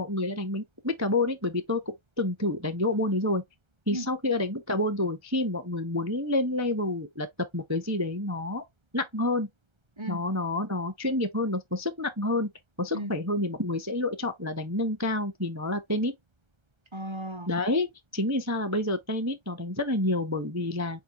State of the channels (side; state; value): left; late; 1.3 ms